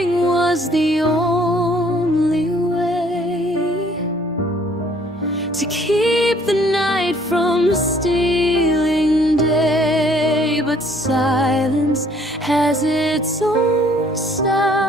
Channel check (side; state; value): both; normal; correlation 0.60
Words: was the only way to keep the night from stealing day. But silence has its own